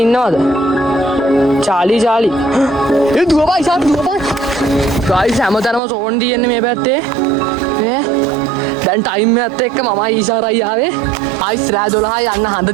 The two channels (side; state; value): left; drops out; at 5.8 s